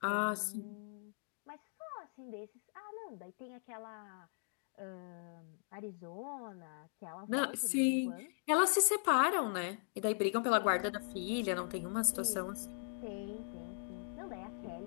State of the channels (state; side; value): silent; right; digital silence